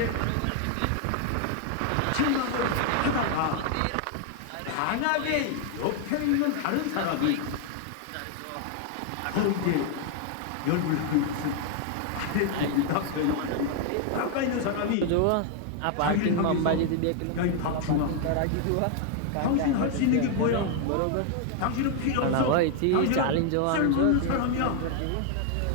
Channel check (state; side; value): different; both; correlation 0.00